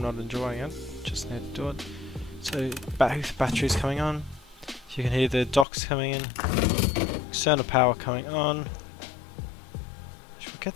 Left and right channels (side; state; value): right; drops out; at 5.7 s